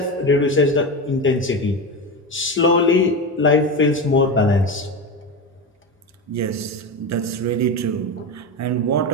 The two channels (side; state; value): both; normal; correlation 0.20